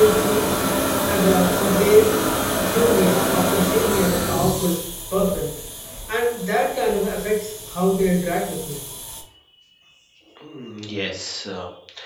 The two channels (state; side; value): identical; both; correlation 1.00